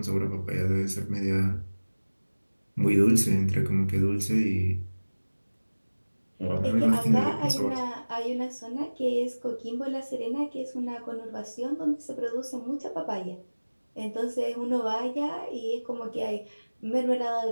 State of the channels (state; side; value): inverted; both; correlation -1.00